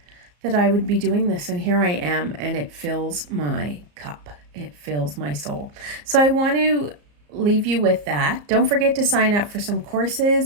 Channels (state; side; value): late; left; 34 ms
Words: that I would be doing this, and here I am, and it fills my cup. It fills my soul. So I want to leave you with that. Don't forget to sign up for some